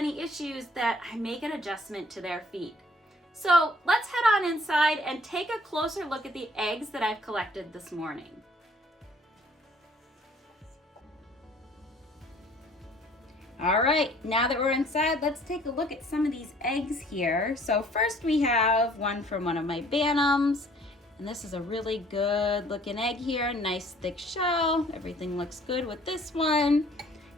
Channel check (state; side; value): normal; both; correlation 0.57